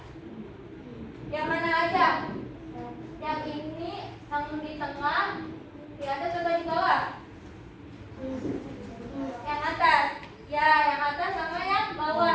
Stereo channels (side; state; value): both; identical; correlation 1.00